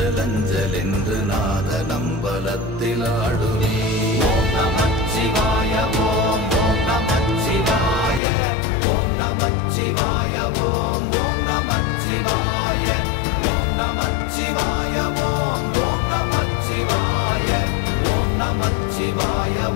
அஞ்சல் என்று நாத நம்பலத்தில் ஆடுவே. ஓம் நமச்சிவாய ஓம் ஓம் நமச்சிவாய ஓம் நமச்சிவாய ஓம் ஓம் நமச்சிவாய ஓம் நமச்சிவாய ஓம் ஓம் நமச்சிவாய ஓம் நமச்சிவாய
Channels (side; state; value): right; drops out; at 8.2 s